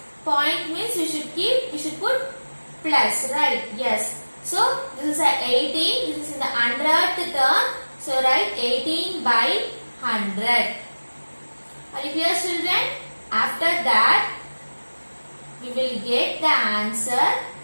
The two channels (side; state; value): both; inverted; correlation -1.00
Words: Point means you should put plus, right? Yes. So, this is a 18. This is in the 100th term. So, write 18 by 100. Are you clear, children? After that, we will get the answer